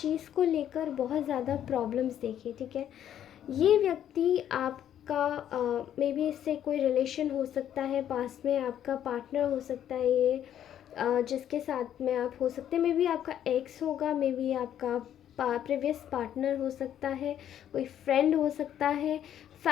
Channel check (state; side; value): quieter; right; 10.4 dB